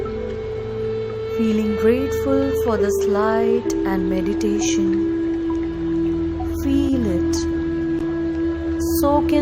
Feeling grateful for this light and meditation. Feel it. Soak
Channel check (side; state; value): both; identical; correlation 1.00